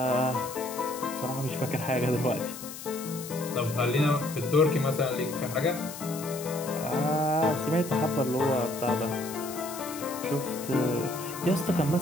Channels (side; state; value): left; noise; hiss, 11 dB below the sound